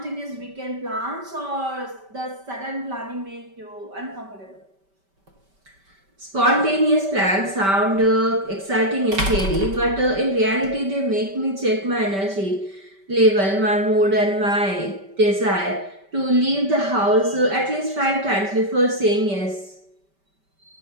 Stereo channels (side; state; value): left; late; 5.1 ms